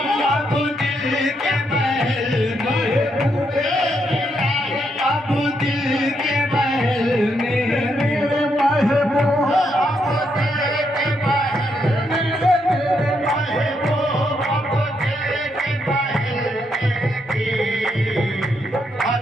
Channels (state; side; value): normal; both; correlation 0.78